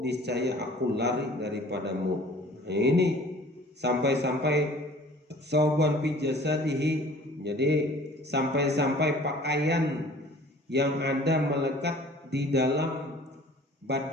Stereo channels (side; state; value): both; normal; correlation 0.49